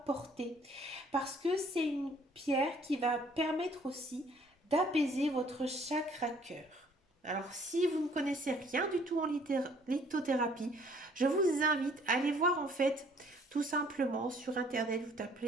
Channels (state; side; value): normal; both; correlation 0.59